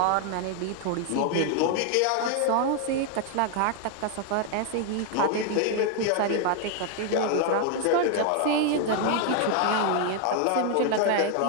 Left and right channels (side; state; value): both; different; correlation 0.01